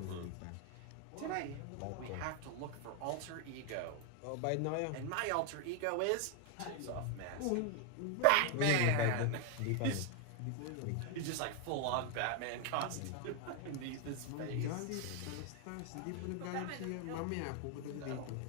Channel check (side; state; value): both; different; correlation 0.00